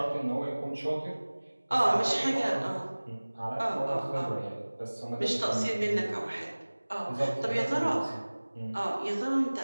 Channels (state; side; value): inverted; both; correlation -1.00